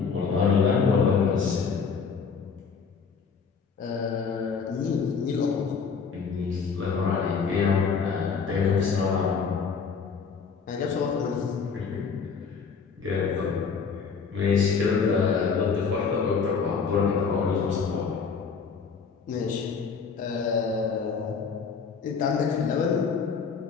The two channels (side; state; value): right; quieter; 5.7 dB